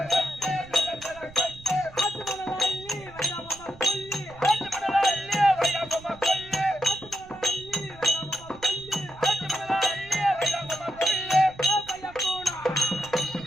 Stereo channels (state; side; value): noise; right; rumble, 21 dB below the sound